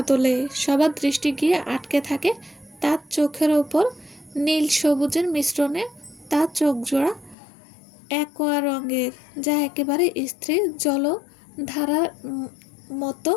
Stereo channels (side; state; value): right; drops out; at 7.4 s